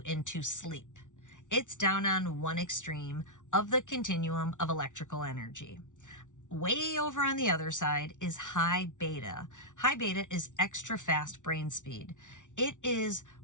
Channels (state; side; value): late; right; 0.86 ms